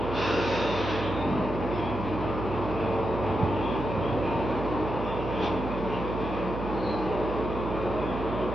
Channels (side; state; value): right; noise; hum, 6 dB below the sound